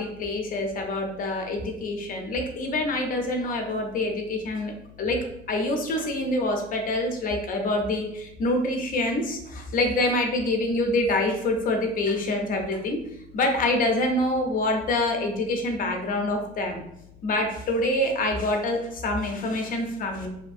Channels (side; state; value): left; noise; hum, 23 dB below the sound